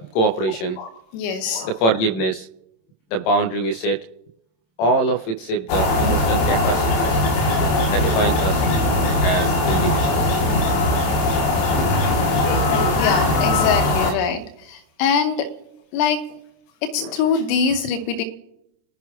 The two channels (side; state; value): right; late; 27 ms